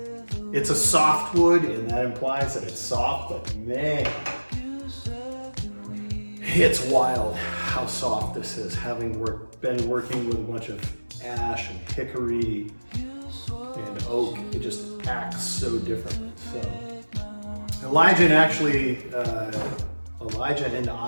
it's a soft wood and that implies that it's soft, but man, it's wild how soft this is, having been working with a bunch of ash and hickory and oak. It just acts so differently. So Elijah and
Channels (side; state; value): both; inverted; correlation -1.00